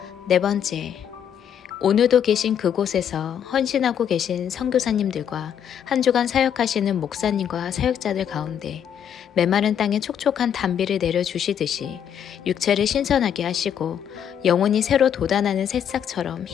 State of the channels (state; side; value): quieter; right; 8.8 dB